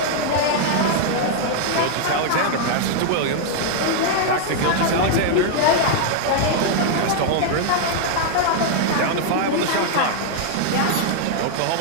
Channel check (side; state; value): both; different; correlation 0.00